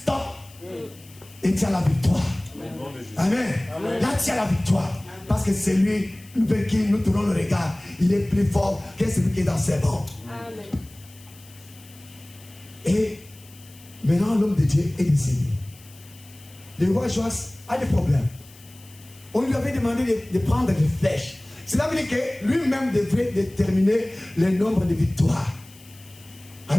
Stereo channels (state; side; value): noise; left; hiss, 23 dB below the sound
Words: Et tient la victoire. Amen. Là, tient la victoire. Parce que c'est lui vers qui nous tournons le regard. Il est plus fort que celui qui est dans ses rangs. Et maintenant, l'homme de Dieu est décédé. Le roi Joas a des problèmes. On lui avait demandé de prendre des flèches. Cela veut dire que lui-même devrait déterminer le nombre de victoires.